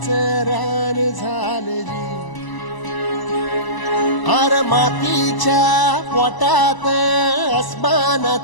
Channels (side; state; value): right; late; 1.0 ms